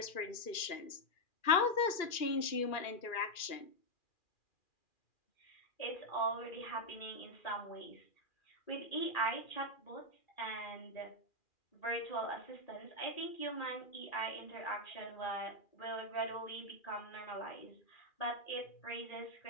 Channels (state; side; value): late; right; 2.4 ms